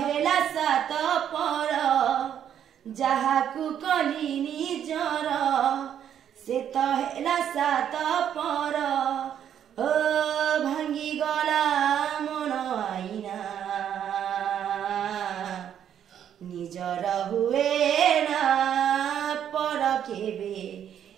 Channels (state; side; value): quieter; left; 9.5 dB